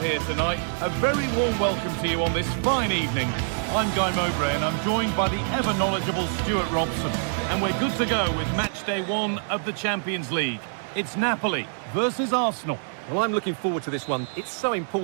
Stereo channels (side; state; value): left; silent; digital silence